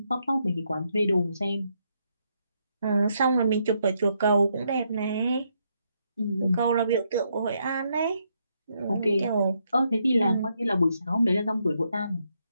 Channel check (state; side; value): inverted; both; correlation -0.77